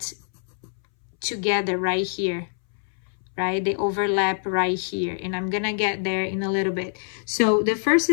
together right here. Right? They overlap right here, and I'm gonna get there in a little bit. So the first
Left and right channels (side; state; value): right; silent; 62 dB below the other